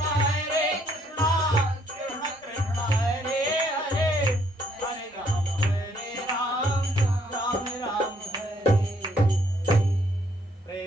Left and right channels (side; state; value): both; normal; correlation 0.68